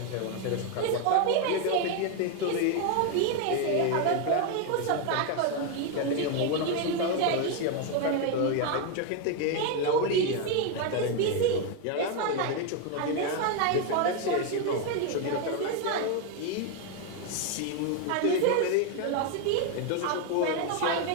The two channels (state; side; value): different; both; correlation 0.01